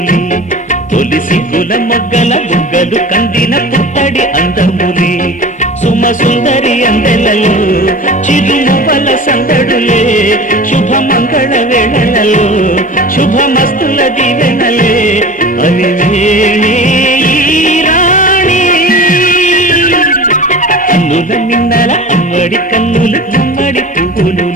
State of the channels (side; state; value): both; normal; correlation 0.36